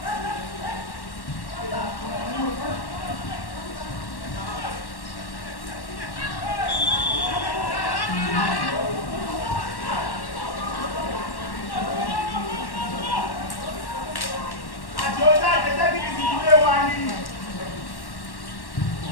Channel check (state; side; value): late; right; 1.1 ms